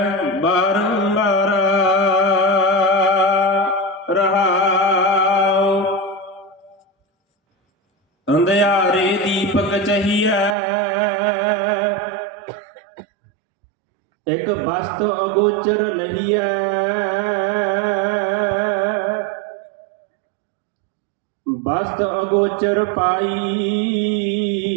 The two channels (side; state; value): left; drops out; at 10.6 s